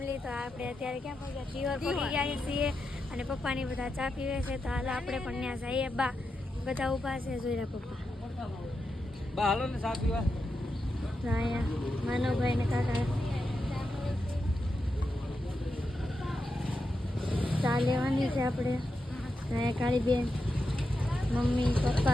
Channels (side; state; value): both; normal; correlation 0.87